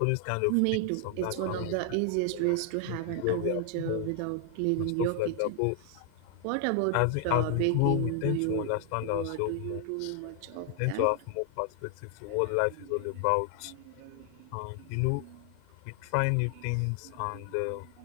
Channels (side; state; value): both; different; correlation 0.00